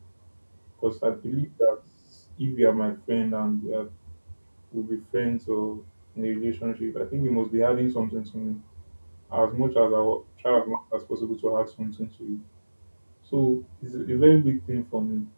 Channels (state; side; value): inverted; both; correlation -1.00